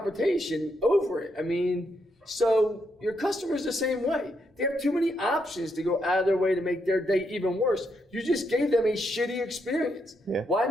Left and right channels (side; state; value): both; normal; correlation 0.78